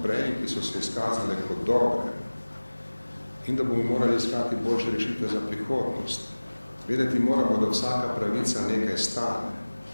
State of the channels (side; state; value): both; inverted; correlation -1.00